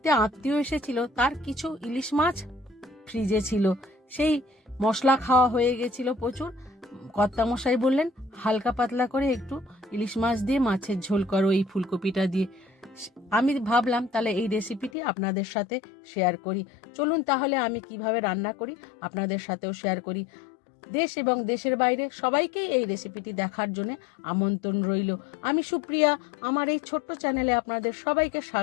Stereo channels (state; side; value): drops out; right; at 14.9 s